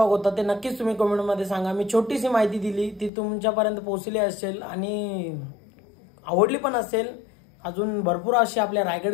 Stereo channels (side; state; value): right; drops out; at 3.1 s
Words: होता ते नक्कीच तुम्ही कमेंटमध्ये सांगा. मी छोटीशी माहिती दिली ती तुमच्यापर्यंत पोहोचली असेल आणि आवडली पण असेल. अजून भरपूर अशी आपल्या